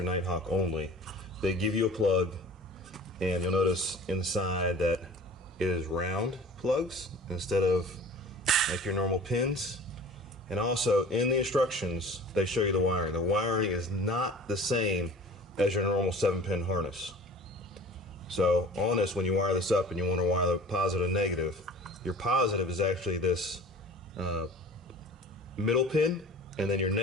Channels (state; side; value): normal; both; correlation 0.43